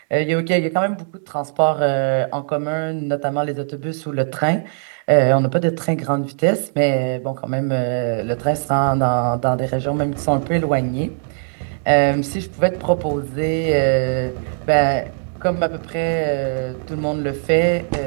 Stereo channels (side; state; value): left; silent; digital silence